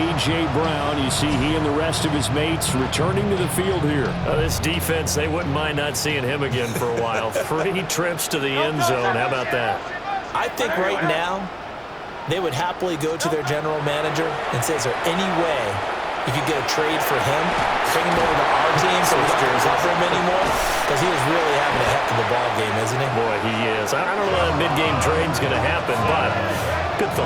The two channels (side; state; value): both; identical; correlation 1.00